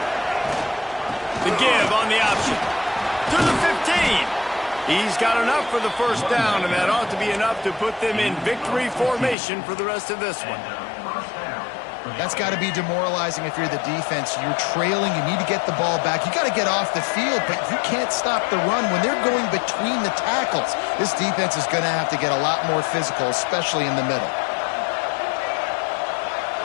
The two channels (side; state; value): right; drops out; at 9.3 s